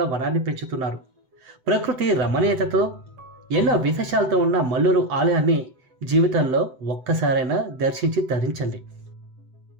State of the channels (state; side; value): late; left; 7.9 ms